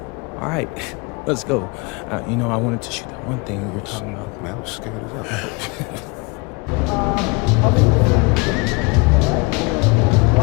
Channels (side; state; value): right; quieter; 28.3 dB